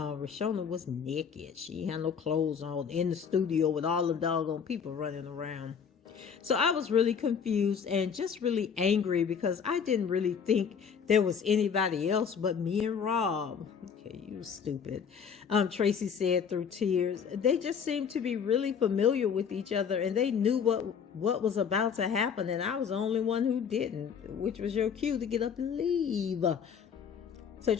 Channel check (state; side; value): quieter; right; 6.9 dB